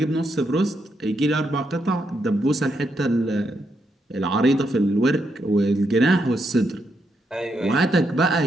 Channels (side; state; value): both; normal; correlation 0.80